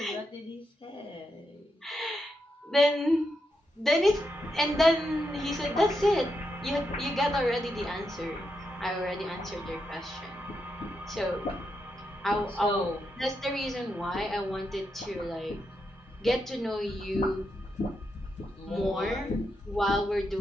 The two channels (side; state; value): both; normal; correlation 0.84